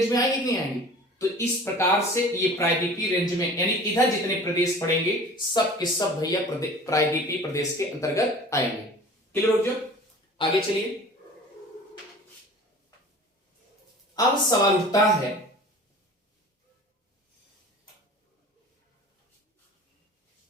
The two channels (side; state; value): both; normal; correlation 0.43